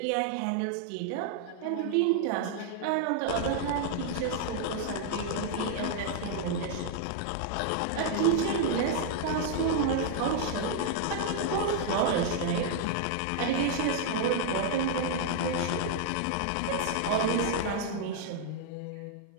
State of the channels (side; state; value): both; different; correlation -0.01